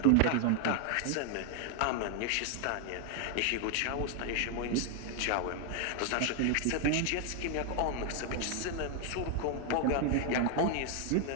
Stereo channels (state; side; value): different; both; correlation 0.00